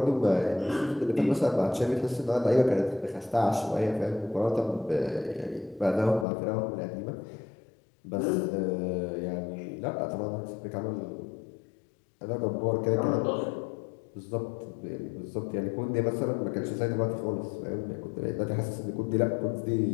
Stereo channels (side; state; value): right; drops out; at 6.2 s